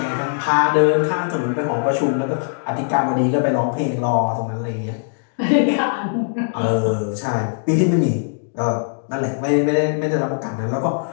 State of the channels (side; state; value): right; silent; digital silence